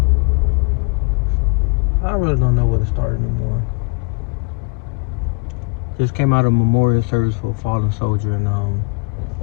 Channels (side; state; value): right; quieter; 33.6 dB